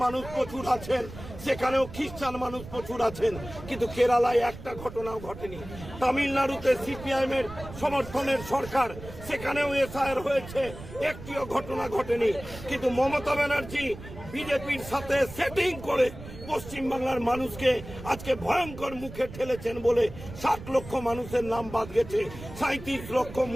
মানুষ প্রচুর আছেন, সেখানেও খ্রিস্টান মানুষ প্রচুর আছেন, কিন্তু কেরালায় একটা ঘটনাও ঘটেনি। তামিলনাড়ুতে সিপিআইএম এর সমর্থনের সরকার, সেখানেও এসআইআর হয়েছে, একটিও ঘটনা ঘটেনি। কিন্তু মমতা ব্যানার্জি বিজেপির সাথে সেটিং করে পশ্চিমবাংলার মানুষকে আজকে ভয়ঙ্কর মুখে ঠেলেছেন বলে 60 লক্ষ মানুষের নাম বাদ গেছে। 37 লক্ষ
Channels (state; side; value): noise; right; rumble, 13 dB below the sound